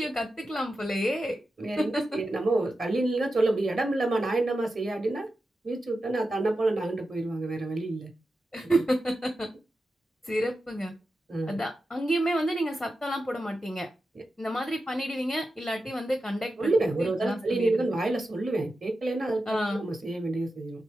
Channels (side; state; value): both; normal; correlation 0.91